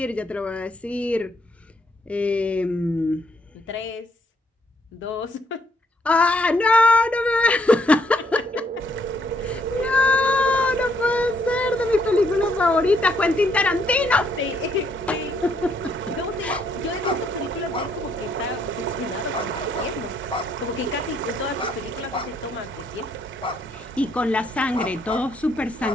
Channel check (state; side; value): normal; both; correlation 0.71